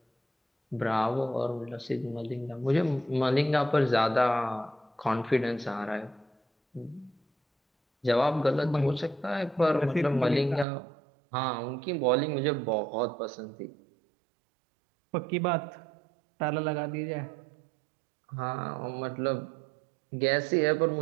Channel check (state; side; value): drops out; left; at 10.7 s